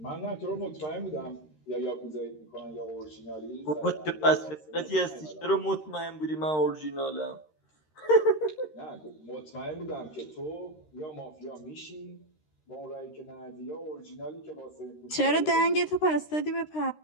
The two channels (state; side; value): late; right; 13 ms